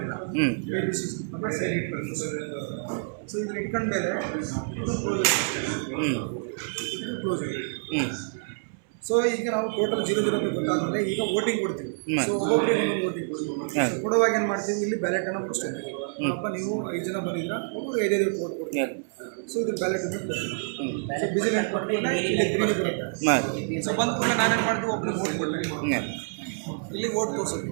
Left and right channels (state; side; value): silent; left; 60 dB below the other